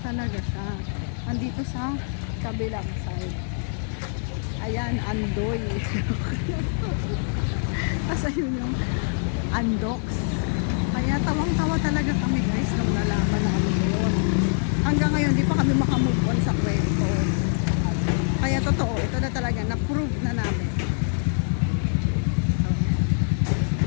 talaga siya. Andito sa kabilang side. Ayan, Andoy. Kasi yun yung Andox. Kaya tawang-tawa talaga kami guys nung nalaman namin yun. Hanggang ngayon, di pa kami makamove on sa kwento. Kaya totoo, ito na talaga, na-prove na namin.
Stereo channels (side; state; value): right; silent; 62 dB below the other